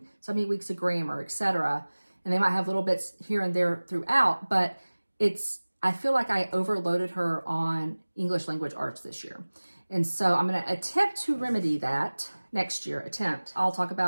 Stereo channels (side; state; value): both; inverted; correlation -1.00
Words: so many weeks of grammar, etc. And they might have little bits here and there throughout, but I feel like I overloaded her on English language arts this year. And so I'm going to attempt to remedy that next year. I'll talk